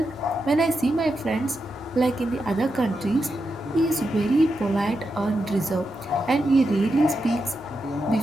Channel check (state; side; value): normal; both; correlation 0.86